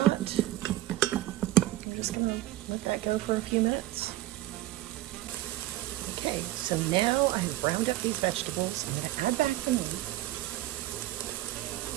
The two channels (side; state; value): left; quieter; 15.6 dB